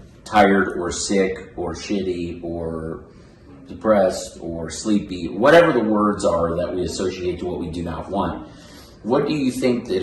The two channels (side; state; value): both; identical; correlation 1.00